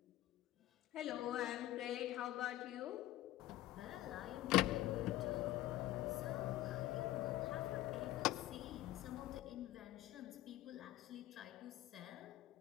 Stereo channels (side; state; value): right; quieter; 15.2 dB